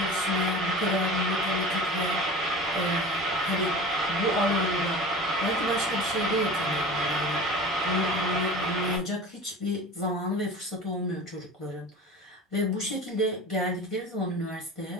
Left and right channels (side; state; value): both; normal; correlation 0.36